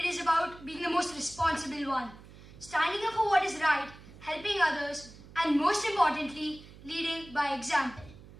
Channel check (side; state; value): right; noise; hum, 19 dB below the sound